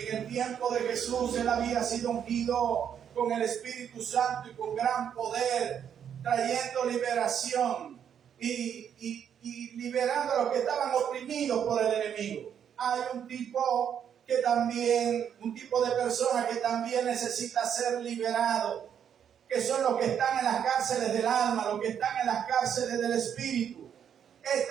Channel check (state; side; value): quieter; left; 8.6 dB